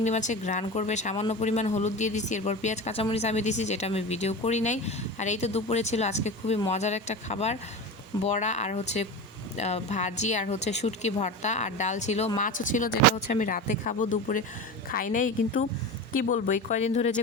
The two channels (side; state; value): both; normal; correlation 0.27